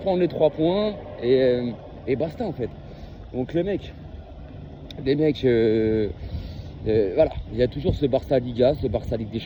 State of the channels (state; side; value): identical; both; correlation 1.00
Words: prendre les 3 points et basta en fait. Donc les mecs, voilà, il y a toujours ce Barça Liga, ce Barça Ligue des